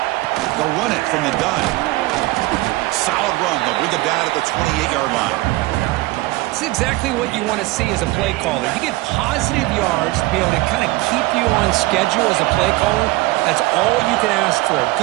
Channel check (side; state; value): left; quieter; 20.1 dB